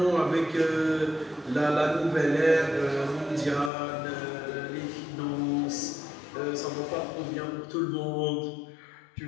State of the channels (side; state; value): right; drops out; at 3.7 s